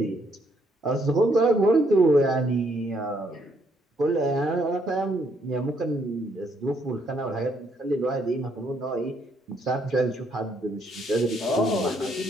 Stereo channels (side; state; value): both; normal; correlation 0.71